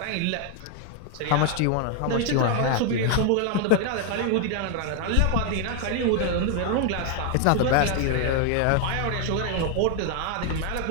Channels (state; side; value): different; both; correlation 0.00